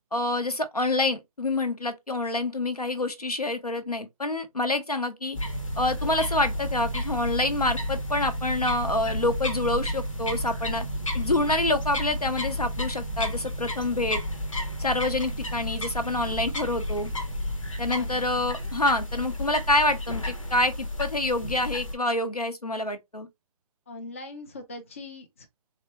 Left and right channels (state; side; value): normal; both; correlation -0.04